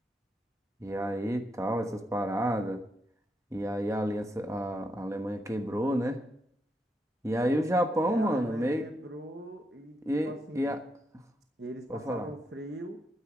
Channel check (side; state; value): both; normal; correlation 0.81